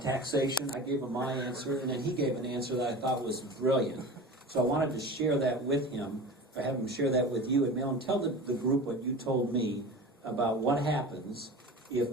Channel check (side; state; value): both; normal; correlation 0.33